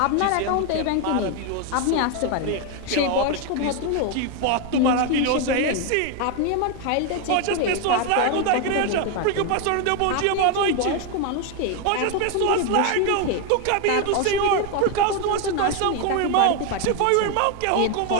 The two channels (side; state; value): both; different; correlation 0.01